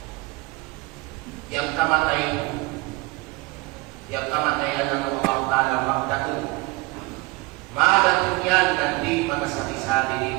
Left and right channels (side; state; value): left; quieter; 23.7 dB